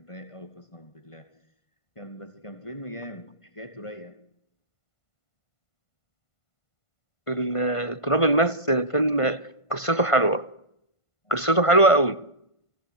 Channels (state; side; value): late; right; 1.5 ms